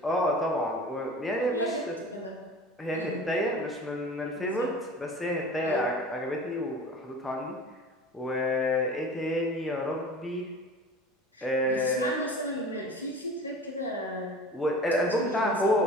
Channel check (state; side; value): normal; both; correlation 0.39